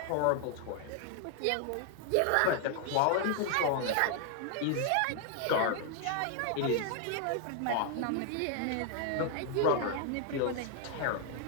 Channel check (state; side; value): different; both; correlation 0.00